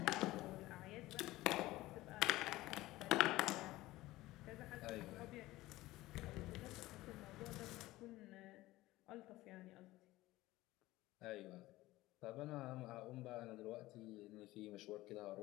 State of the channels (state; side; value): quieter; right; 17.8 dB